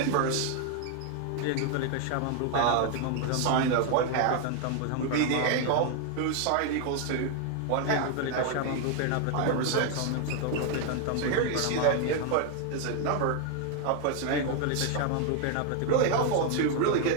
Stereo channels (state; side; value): different; both; correlation 0.00